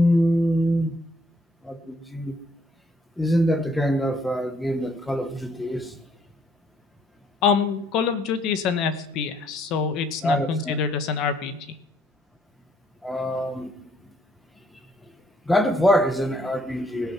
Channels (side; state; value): both; normal; correlation 0.67